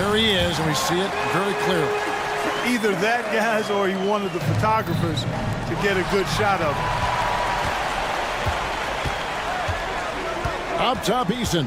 he is, and we see it very clearly. Either that, guys, or he wanted the photographers to get a good shot of him. Up top,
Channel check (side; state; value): both; identical; correlation 1.00